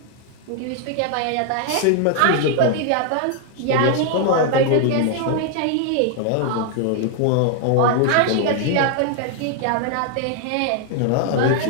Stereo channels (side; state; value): both; different; correlation 0.00